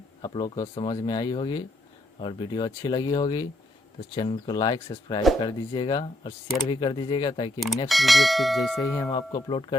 आप लोग को समझ में आई होगी और वीडियो अच्छी लगी होगी तो चैनल को लाइक सब्सक्राइब कर दीजिएगा और शेयर भी कर दीजिएगा, ताकि नेक्स्ट वीडियो फिर जैसे ही हम आपको अपलोड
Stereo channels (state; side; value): normal; both; correlation 0.75